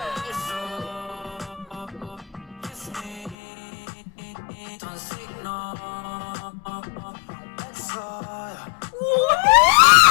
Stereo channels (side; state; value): right; drops out; at 3.4 s